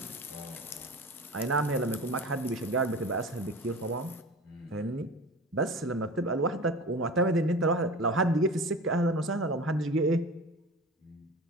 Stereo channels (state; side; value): normal; both; correlation 0.35